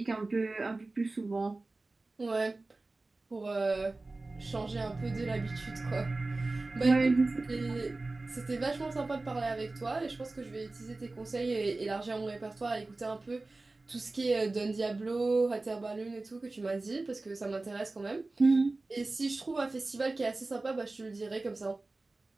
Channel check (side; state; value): left; quieter; 3.2 dB